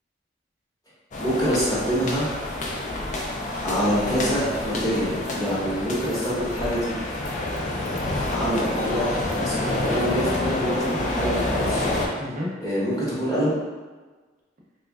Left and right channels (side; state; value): both; normal; correlation 0.44